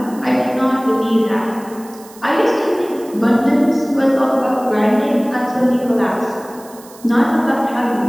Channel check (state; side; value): noise; right; hiss, 22 dB below the sound